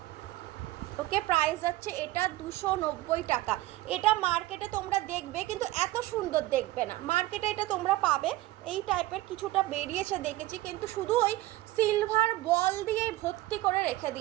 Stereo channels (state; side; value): quieter; left; 17.2 dB